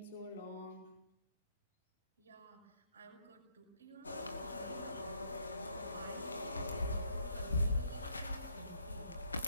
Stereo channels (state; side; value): inverted; both; correlation -0.70